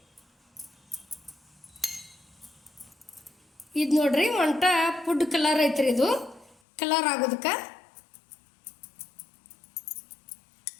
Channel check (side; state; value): right; drops out; at 6.6 s